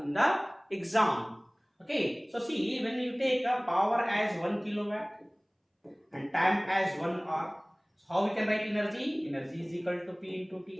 the exam. Okay, so see, when you take a power as 1 kilowatt and time as 1 hour, so how we can write energy? Energy is equal to P into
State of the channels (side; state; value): both; identical; correlation 1.00